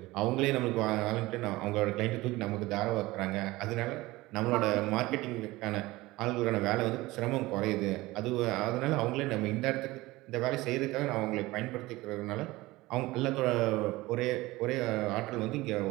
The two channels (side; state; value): left; quieter; 19.7 dB